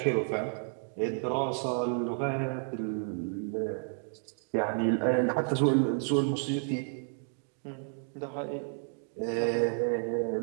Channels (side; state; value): left; silent; 57 dB below the other